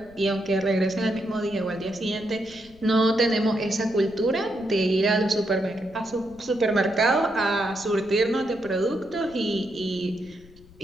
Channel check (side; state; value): left; noise; rumble, 24 dB below the sound